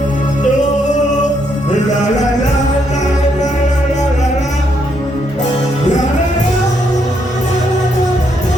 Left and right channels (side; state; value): both; normal; correlation 0.75